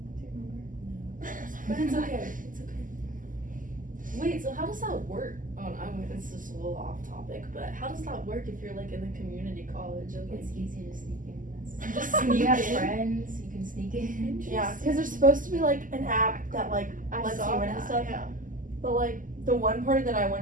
Do you remember? But it's okay. It's okay. Wait, so how does that work? It's just a little off topic, but how does that work if you're like in a community college and like it's easy to sneak in. just When sneak you have in? friends, you can sneak in. Yeah, because there's supposed to be like an app that like I lets saw you in that, and stuff. yeah. But like the one party that I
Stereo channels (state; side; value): late; left; 0.38 ms